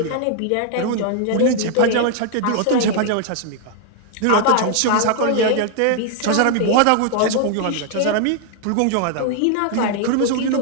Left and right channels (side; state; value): both; different; correlation 0.00